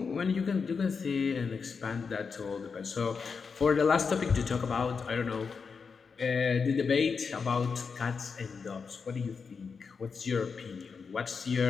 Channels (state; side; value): quieter; right; 5.4 dB